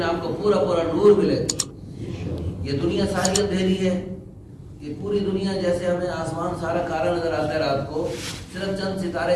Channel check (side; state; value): both; identical; correlation 1.00